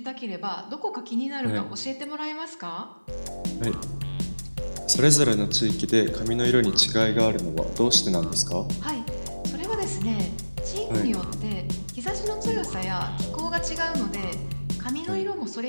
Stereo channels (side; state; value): both; inverted; correlation -1.00